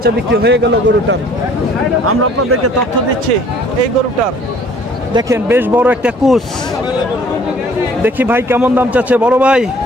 বিক্রি হয়ে গেল গরুটার। আমরা আপনাদেরকে তথ্য দিচ্ছি এই গরুটার। দেখেন বেশ বড় একটা কুচ। দেখি ভাই কেমন দাম চাচ্ছে। বড় ভাই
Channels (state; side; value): normal; both; correlation 0.55